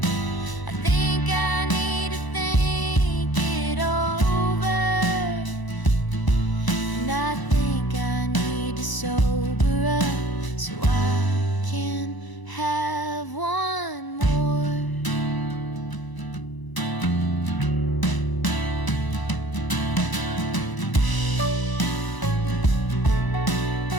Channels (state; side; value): late; right; 1.0 ms